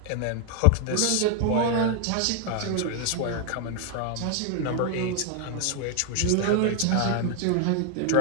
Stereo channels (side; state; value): both; different; correlation 0.00